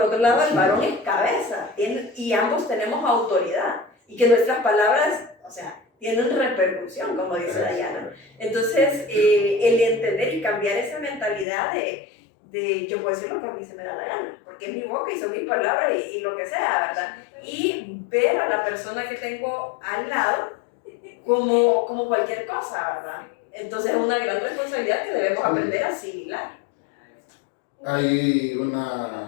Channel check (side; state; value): right; drops out; at 11.5 s